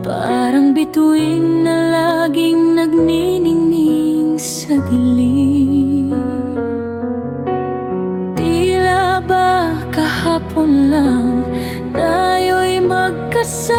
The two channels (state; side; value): identical; both; correlation 1.00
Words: bituin na laging nagniningning sa dilim. Tila ba kahapon lang tayo'y